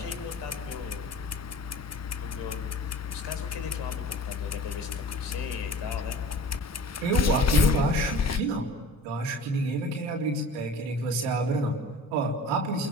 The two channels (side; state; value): both; normal; correlation 0.41